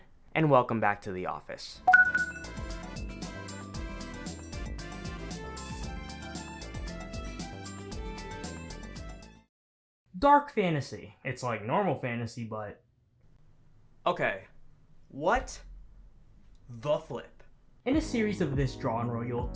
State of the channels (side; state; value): both; identical; correlation 1.00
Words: and welcome back to the office. Dark fantasy. It's like normal fantasy, but... Okay, what the flip? In a series of this genre, you'll